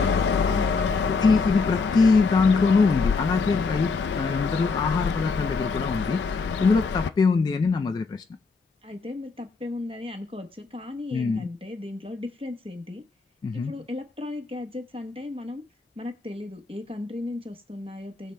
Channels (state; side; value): quieter; right; 4.4 dB